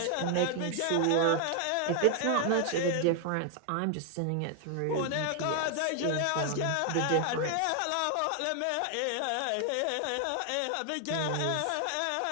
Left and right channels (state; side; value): different; both; correlation 0.00